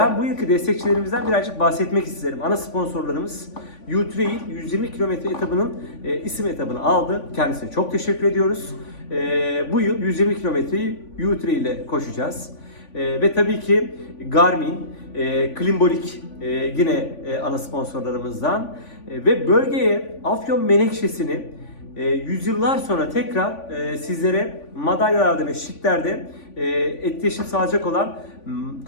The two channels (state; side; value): late; right; 3.5 ms